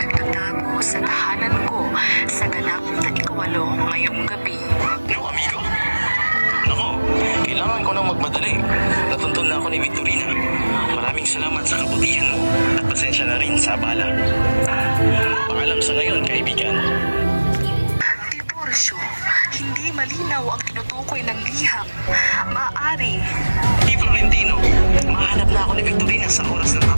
sa tahanan ko sa ganap na ikawalo ngayong gabi. No, amigo? Nako, kailangan ko nang magmadali. Natuntun na ako ni Victorina. Maraming salamat sa kabutihan mo at pasensya na rin sa abala. Paalam sa ngayon, kaibigan. Tiburcio, hindi malinaw ang tinutukoy ng liham. Maaari. Di Florentino, mahanap na ako ni Victorina sa oras na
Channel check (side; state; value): both; inverted; correlation -1.00